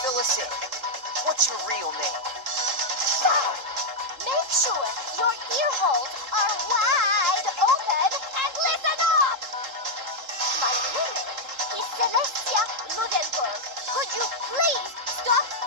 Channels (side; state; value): left; late; 3.8 ms